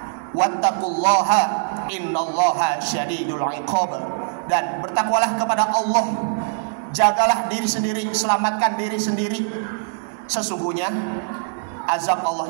Wattaqullaha innallaha syadidul iqab. Dan bertakwalah kepada Allah, jagalah diri sendiri, selamatkan diri sendiri. Sesungguhnya azab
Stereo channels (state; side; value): silent; left; digital silence